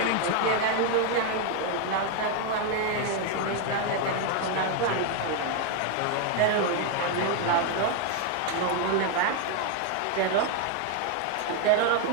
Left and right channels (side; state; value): both; different; correlation 0.01